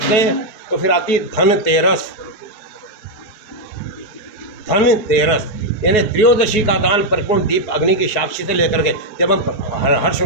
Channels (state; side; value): late; right; 4.6 ms